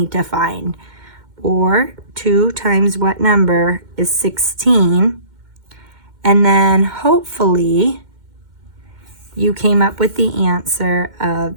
to find. Or 2 times what number is 16. And then hopefully you came up with the answer of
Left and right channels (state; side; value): late; left; 2.1 ms